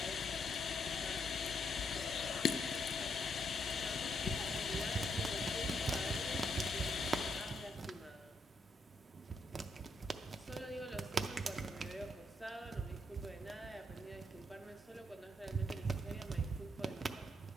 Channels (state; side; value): normal; both; correlation 0.76